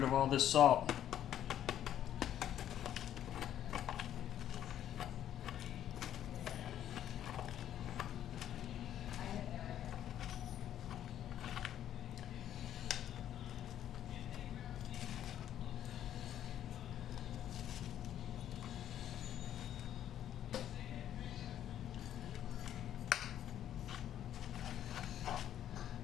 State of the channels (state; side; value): quieter; right; 11.0 dB